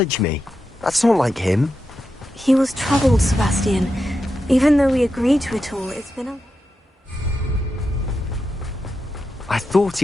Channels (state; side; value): normal; both; correlation 0.88